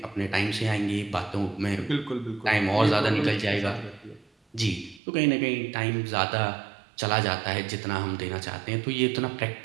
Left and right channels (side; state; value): left; drops out; at 5.0 s